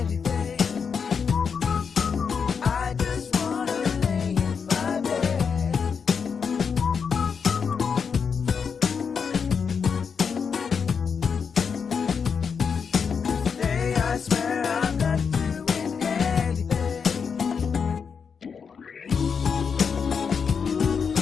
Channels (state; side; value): quieter; right; 6.2 dB